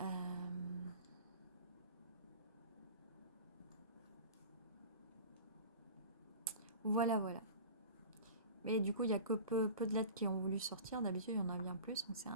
Voilà, voilà. Mais du coup, il n'y a que peu de lettres qui ont voulu sortir. D'habitude, il y en a bien plus. Donc c'est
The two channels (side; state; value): both; inverted; correlation -0.37